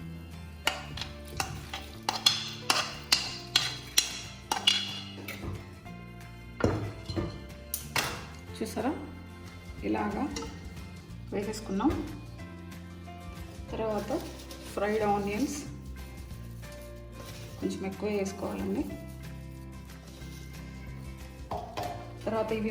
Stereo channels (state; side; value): identical; both; correlation 1.00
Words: చూసారా, ఇలాగా వేసేసుకున్నాం. తర్వాత ఫ్రైడ్ ఆనియన్స్ కొంచెం ఎక్కువ వేసుకోవాలండి. తర్వాత